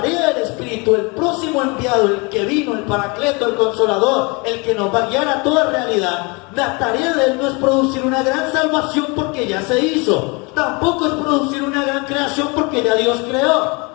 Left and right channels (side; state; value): right; quieter; 29.1 dB